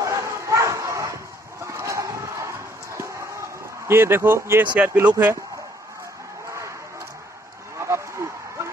ये देखो, ये सीआरपी लोग है।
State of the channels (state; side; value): normal; both; correlation 0.65